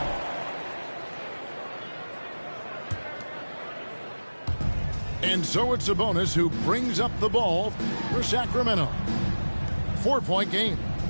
And so it's Sabonis who brings up the ball for Sacramento. 4-point game.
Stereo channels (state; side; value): inverted; both; correlation -1.00